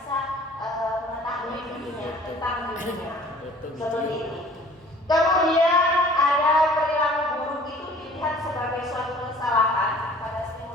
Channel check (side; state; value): both; normal; correlation 0.50